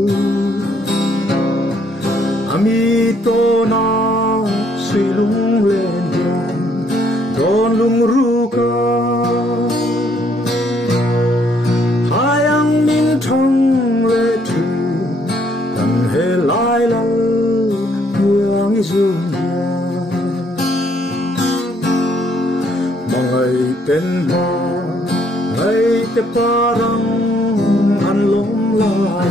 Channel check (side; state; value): both; normal; correlation 0.68